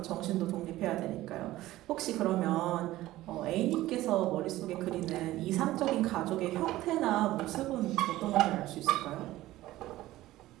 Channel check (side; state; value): left; quieter; 16.1 dB